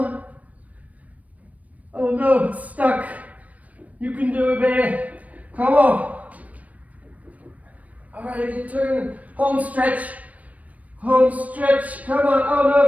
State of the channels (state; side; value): late; left; 0.070 ms